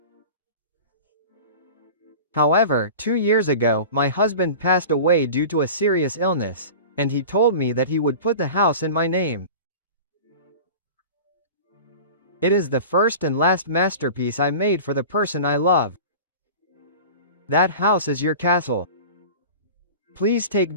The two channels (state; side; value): inverted; both; correlation -0.36